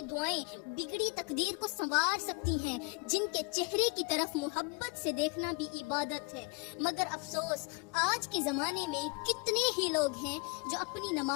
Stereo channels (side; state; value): right; quieter; 30.4 dB